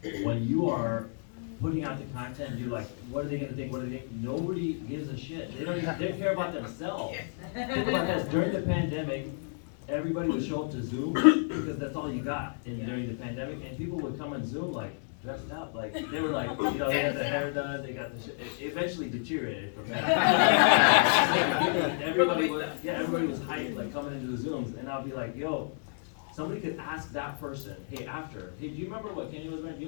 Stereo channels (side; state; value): right; silent; digital silence